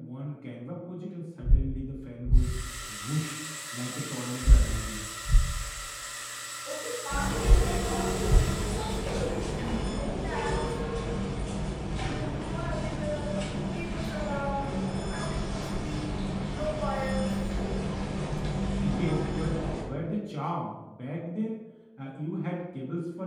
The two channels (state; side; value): identical; both; correlation 1.00